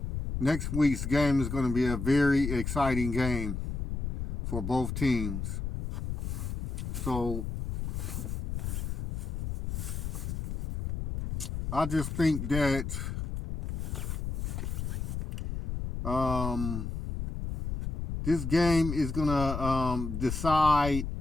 next week's game is going to be a very exciting game for both teams. So I just think that this game is gonna decide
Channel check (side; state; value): left; noise; rumble, 4 dB below the sound